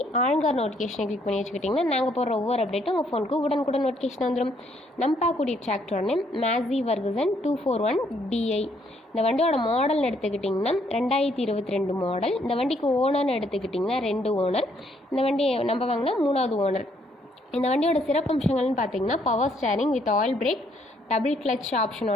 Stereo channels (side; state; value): both; normal; correlation 0.69